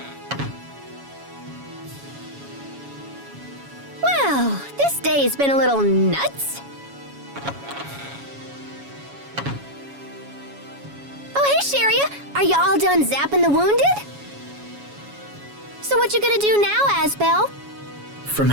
Well, this day's been a little nuts. Oh, hey, Sharia. Are you all done zapping the wounded? So what you gonna do now, Asbel? From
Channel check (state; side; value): late; left; 7.2 ms